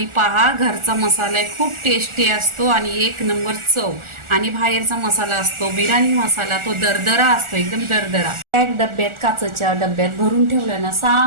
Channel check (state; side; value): late; left; 1.4 ms